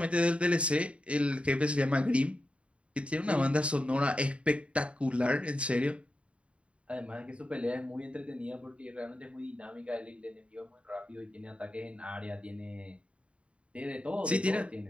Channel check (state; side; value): late; left; 0.060 ms